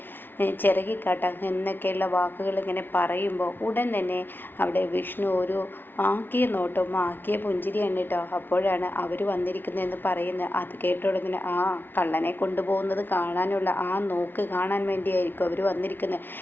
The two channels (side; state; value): right; late; 0.099 ms